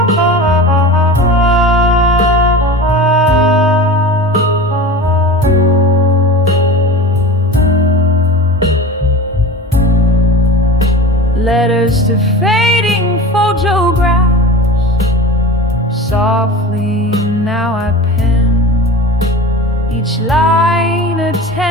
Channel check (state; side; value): normal; both; correlation 0.33